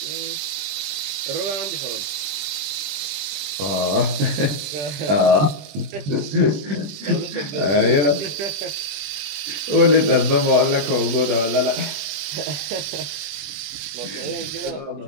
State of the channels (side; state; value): left; late; 20 ms